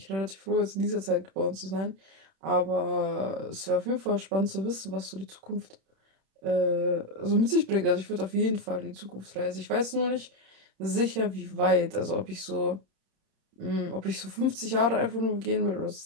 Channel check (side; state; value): left; late; 31 ms